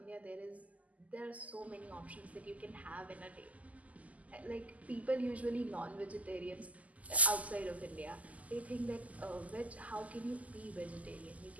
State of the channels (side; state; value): left; late; 0.074 ms